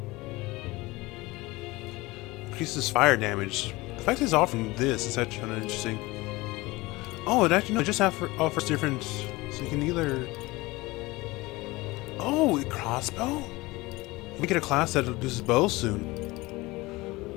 Increases fire damage. The fact it's offering this is actually kind of interesting. Oh, it actually, no, it just offers different, so you can either... Oh, a crossbow? We get a class that uses bows soon.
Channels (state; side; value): quieter; right; 21.4 dB